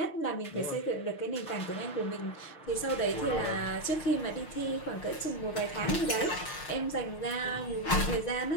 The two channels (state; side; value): late; right; 6.7 ms